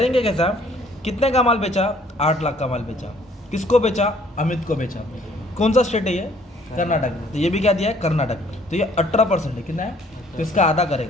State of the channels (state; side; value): normal; both; correlation 0.60